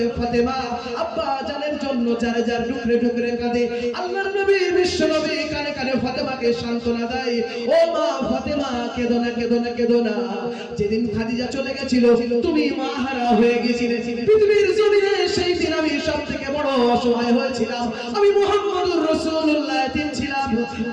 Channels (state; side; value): identical; both; correlation 1.00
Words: ফাতেমা আব্বা জানের জন্য যার যার টুকরে টুকরে কাঁদে। আল্লাহর নবী বিশ্ব নবী কানে কানে ফাতেমাকে সান্ত্বনা দেয়, ও মা ফাতেমা কেঁদো না, কেঁদো না, কেঁদো না। যেদিন খাদিজা চলে গেছিল তুমি মা হারা হয়ে গেছিলে পৃথিবীর জমিনে, সেই দিন আমি সবথেকে বড় অসহায় হয়েছিলাম। আমি মুহাম্মদুর রাসূলুল্লাহ এতিম ছিলাম,